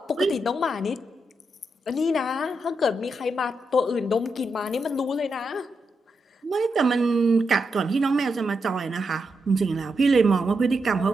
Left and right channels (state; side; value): normal; both; correlation 0.84